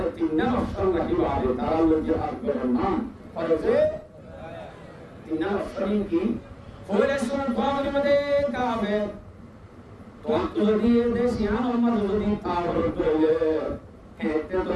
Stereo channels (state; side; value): identical; both; correlation 1.00